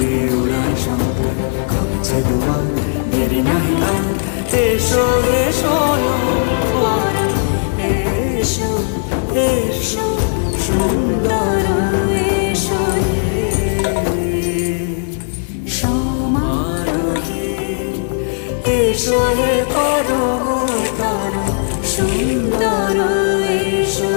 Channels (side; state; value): right; silent; digital silence